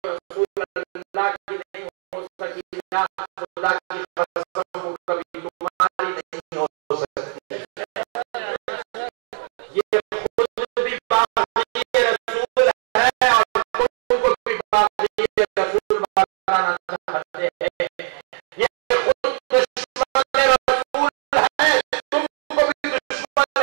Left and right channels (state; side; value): quieter; left; 39.1 dB